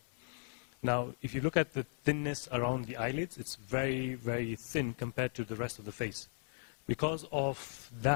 Now, if you look at the thinness around the eyelids, it's very, very thin compared to the rest of the face. Because of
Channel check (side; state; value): right; silent; 53 dB below the other